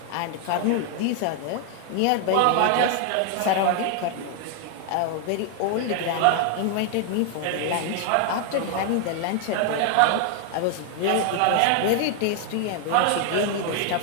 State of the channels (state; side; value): different; both; correlation 0.00